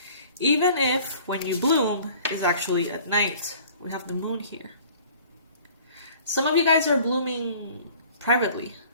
Even if when you bloom is actually at night. We have the moon here. Some of you guys are blooming privately.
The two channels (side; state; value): both; inverted; correlation -0.50